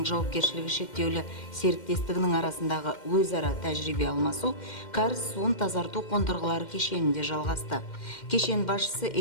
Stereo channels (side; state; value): right; late; 2.1 ms